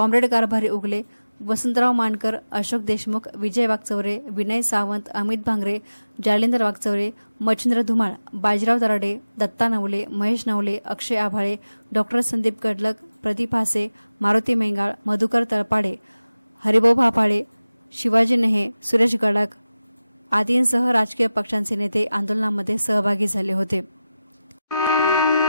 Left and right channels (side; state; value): both; inverted; correlation -0.95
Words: कारभारी उगले, वसंतराव मानकर, अशोक देशमुख, विजय वागचौरे, विनय सावंत, अमित भांगरे, जालिंदर वागचौरे, मच्छिंद्र धुमाळ, बाजीराव दराडे, दत्ता नवले, महेश नवले, अक्षय आभाळे, डॉक्टर संदीप कडलक, प्रदीप हासे, मारुती मेंगाळ, मधुकर तळपाडे, हरिभाऊ भापाळे, शिवाजी नेहे, सुरेश गडाख आदींसह राजकीय पक्षांचे नेते आंदोलनामध्ये सहभागी झाले होते।